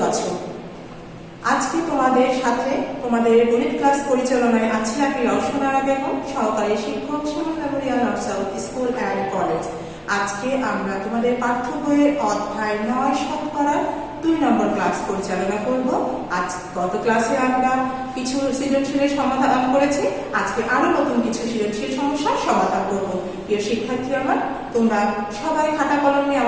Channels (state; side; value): identical; both; correlation 1.00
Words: আছো। আজকে তোমাদের সাথে তোমাদের গণিত ক্লাস পরিচালনায় আছি আমি রওশনারা বেগম, সহকারী শিক্ষক, Shimul memorial north south school and college. আজকে আমরা তোমাদের পাঠ্য বইয়ের অধ্যায় 9 শতকরা 2 নম্বর ক্লাস পরিচালনা করব। আজ গত ক্লাসে আমরা কিছু সৃজনশীলের সমাধান করেছি, আজকে আরো নতুন কিছু সৃজনশীল সমস্যার সমাধান করব। প্রিয় শিক্ষার্থী আমার, তোমরা সবাই খাতা কলম নিয়ে